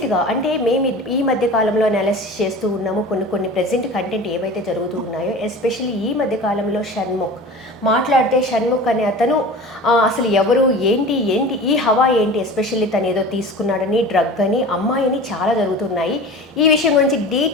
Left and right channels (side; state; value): both; normal; correlation 0.36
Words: అంటే మేము ఈ మధ్య కాలంలో అనాలిసిస్ చేస్తూ ఉన్నాము కొన్ని ప్రెజెంట్ కంటెంట్ ఏవైతే జరుగుతూ ఉన్నాయో, ఎస్పెషల్లీ ఈ మధ్య కాలంలో షణ్ముఖ్ మాట్లాడితే షణ్ముఖ్ అనే అతను అసలు ఎవరు ఏంటి ఈ హవా ఏంటి, ఎస్పెషల్లీ తను ఏదో తీసుకున్నాడని, డ్రగ్ అని, అమ్మాయిని చాలా జరుగుతున్నాయి. ఈ విషయం గురించి